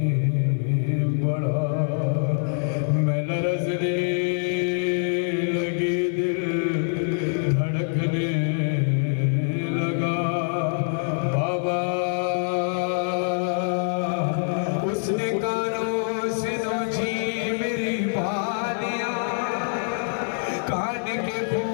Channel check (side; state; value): right; silent; digital silence